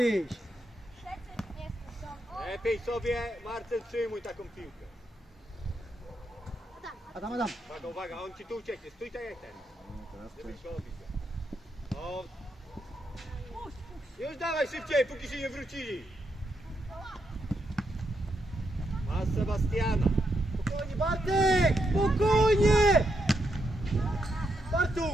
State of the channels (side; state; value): both; normal; correlation 0.81